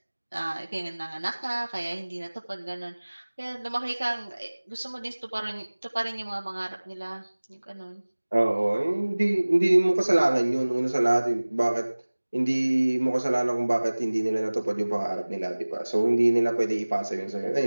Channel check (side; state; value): both; inverted; correlation -1.00